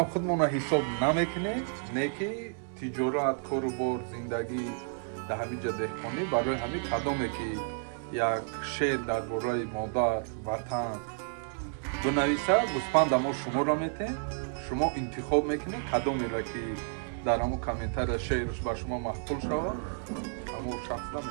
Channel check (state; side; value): silent; left; digital silence